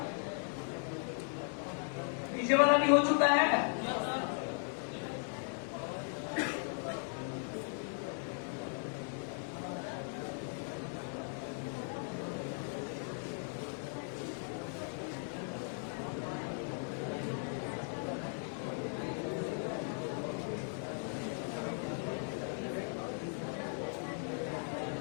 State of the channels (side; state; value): right; silent; 53 dB below the other